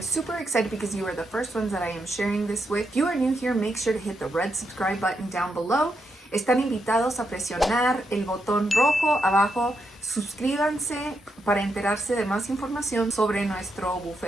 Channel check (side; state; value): both; normal; correlation 0.82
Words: excited because you are the first ones that I am sharing this with. If you are new here, make sure to hit the red subscribe button down below. Están invitados a presionar el botón rojo abajo. Suscríbanse para enterarse de más información sobre nuestro